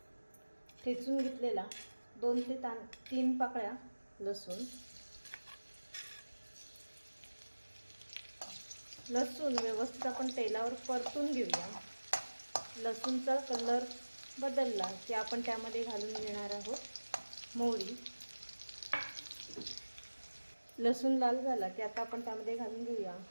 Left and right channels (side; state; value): both; inverted; correlation -1.00